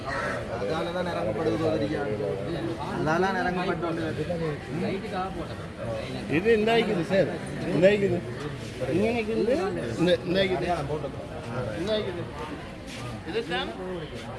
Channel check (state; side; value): identical; both; correlation 1.00